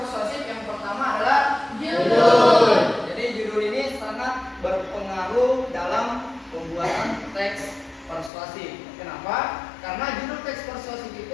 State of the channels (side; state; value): right; drops out; at 8.3 s